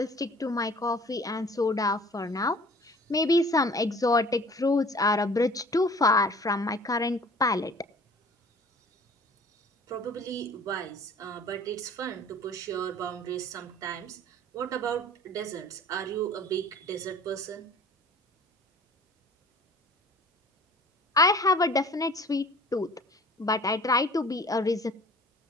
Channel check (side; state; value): both; normal; correlation 0.48